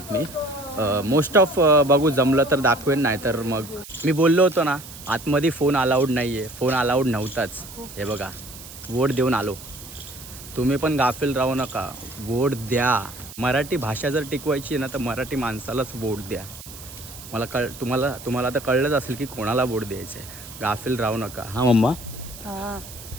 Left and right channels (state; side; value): noise; right; hiss, 15 dB below the sound